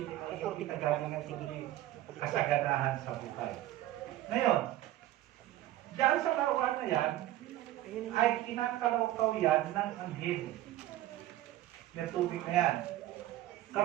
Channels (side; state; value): left; quieter; 14.5 dB